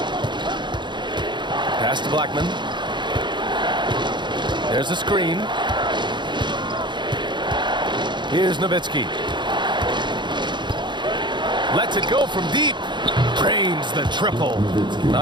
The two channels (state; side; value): late; left; 0.22 ms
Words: Pass to Blackman. There's a screen. Here's Nowitzki. Lets it go from deep. Drains the triple.